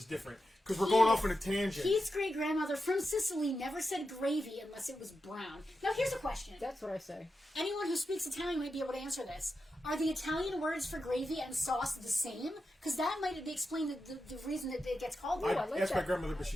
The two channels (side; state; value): both; normal; correlation 0.89